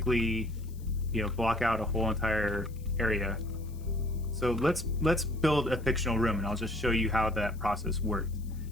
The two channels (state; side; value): noise; left; hiss, 26 dB below the sound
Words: block out a whole entire area. So let's build a fictional room, and I'll just show you how that process worked.